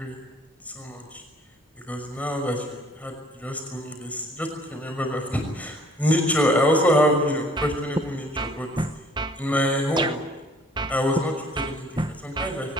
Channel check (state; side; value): normal; both; correlation 0.55